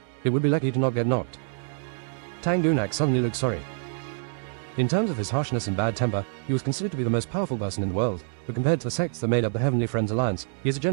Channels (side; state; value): left; silent; 61 dB below the other